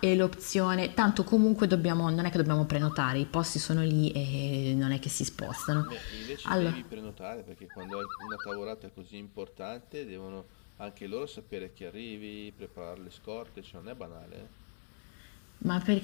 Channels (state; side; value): silent; right; digital silence